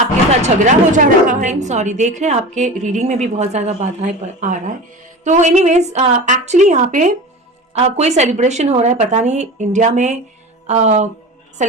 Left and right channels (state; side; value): normal; both; correlation 0.32